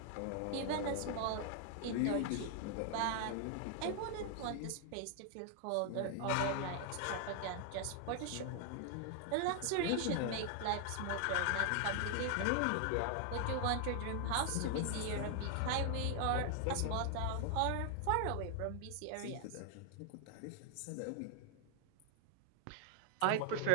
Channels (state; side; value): different; both; correlation 0.00